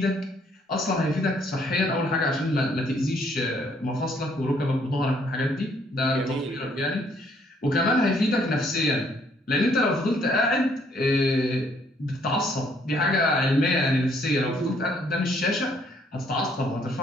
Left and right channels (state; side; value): normal; both; correlation 0.66